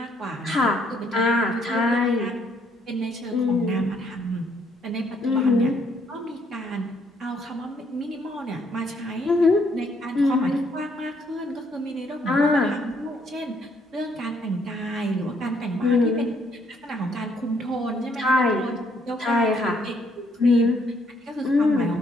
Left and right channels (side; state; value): both; normal; correlation 0.69